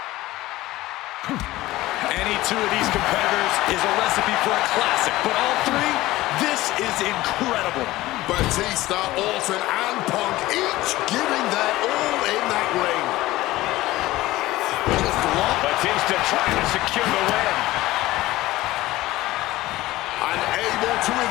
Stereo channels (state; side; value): quieter; right; 17.5 dB